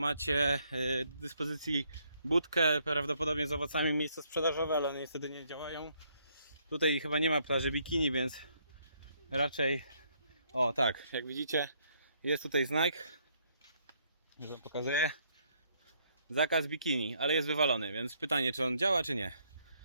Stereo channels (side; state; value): both; inverted; correlation -0.70